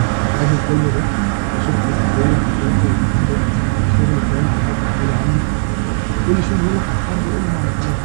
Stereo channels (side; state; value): left; silent; 60 dB below the other